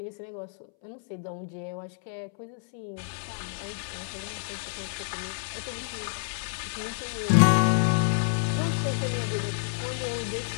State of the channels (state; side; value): silent; right; 59 dB below the other